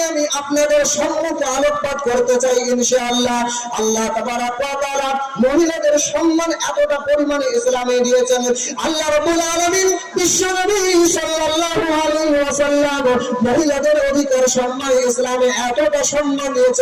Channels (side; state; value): both; identical; correlation 1.00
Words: আমি আপনাদের সম্মুখে আলোকপাত করতে চাই ইনশাআল্লাহ। আল্লাহ তাবারাক ওয়া তাআলা মহিলাদের সম্মান এতটা পরিমাণে ইসলামে দিয়েছেন। আল্লাহ রাব্বুল আলামিন বিশ্বনবী সাল্লাল্লাহু আলাইহি ওয়াসাল্লাম মহিলাদের অধিকার সম্মান ইসলামে এতটা সম্মান